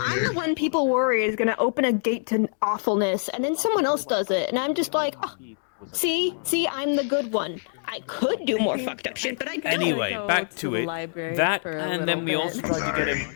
I'm there. the one people worry is gonna open a gate to awfulness, and then someone else does it, and I'm just like, oh, see, I'm the good one. I could do more fucked up shit, but I don't. Anyway, back to it. That, for a and then we little also bit. tried to get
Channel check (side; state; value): right; silent; digital silence